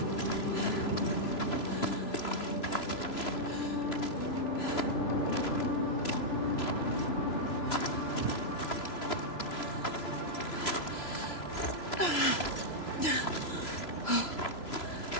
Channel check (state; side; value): late; right; 3.0 ms